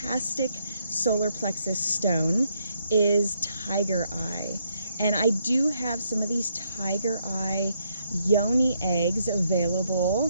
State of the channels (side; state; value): both; inverted; correlation -0.75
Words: solar plexus stone is tiger eye. And I do have some of these tiger eye yoni eggs available.